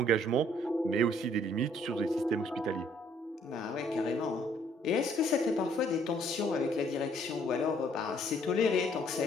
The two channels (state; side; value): normal; both; correlation 0.64